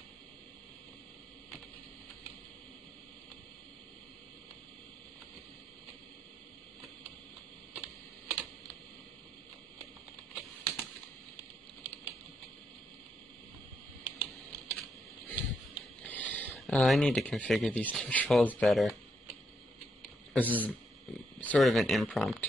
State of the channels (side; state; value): both; normal; correlation 0.78